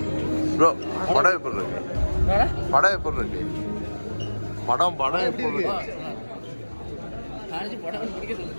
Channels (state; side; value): inverted; both; correlation -1.00